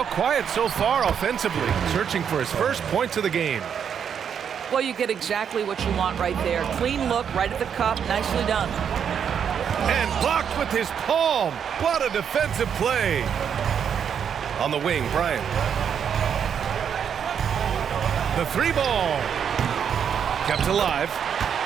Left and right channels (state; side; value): quieter; left; 7.8 dB